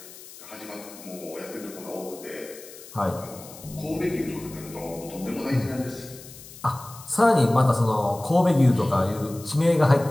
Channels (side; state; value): left; noise; hiss, 17 dB below the sound